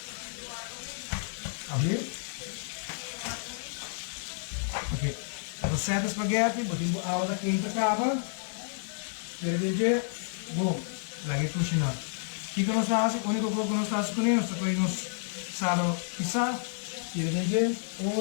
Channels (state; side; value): silent; right; digital silence